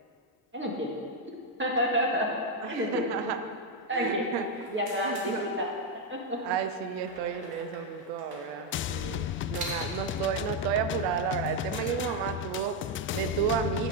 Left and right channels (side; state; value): both; normal; correlation 0.03